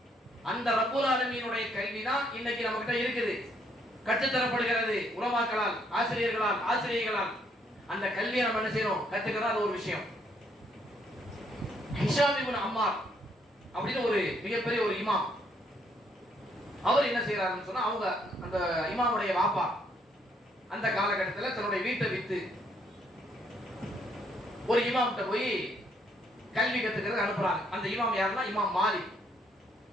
அந்த ரப்புல் ஆலமீனுடைய கல்வி தான் இன்னைக்கு நம்ம கிட்ட இருக்குது, கற்றுத்தரப்படுகிறது உலமாக்களால், ஆசிரியர்களால். அந்த கல்வியை நம்ம என்ன செய்யணும், கத்துக்கிறோம். அது ஒரு விஷயம். ஹிஷாம் இப்னு அம்மார் அப்படின்னு ஒரு மிகப்பெரிய ஒரு இமாம், அவர் என்ன செய்யறாருன்னு சொன்னா, அவங்க அந்த இமாமுடைய வாப்பா அந்த காலகட்டத்தில் தன்னுடைய வீட்டை வித்து ஒரு இமாம்கிட்ட போய் கல்வி கத்துக்கிறது அனுப்புறாங்க. அந்த இமாம் யாருன்னா இமாம் மாலிக்,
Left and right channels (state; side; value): normal; both; correlation 0.70